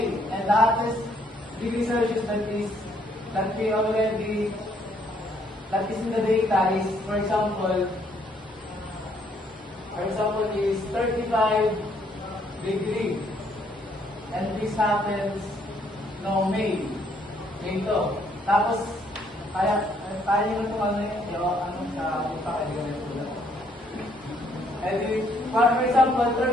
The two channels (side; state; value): both; normal; correlation 0.68